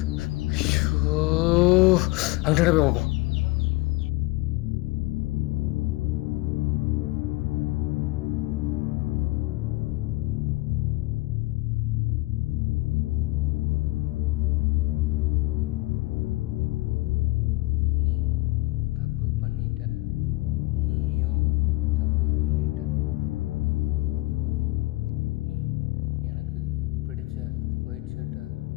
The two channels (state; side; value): quieter; right; 21.1 dB